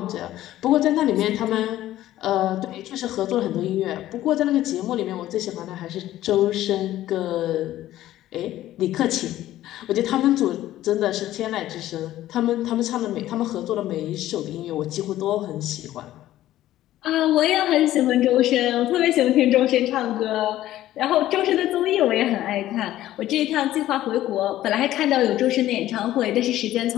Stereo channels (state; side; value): quieter; right; 14.0 dB